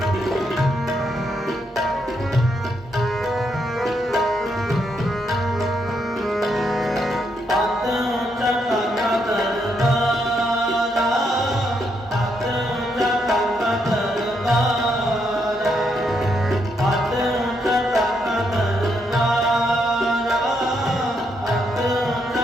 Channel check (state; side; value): normal; both; correlation 0.77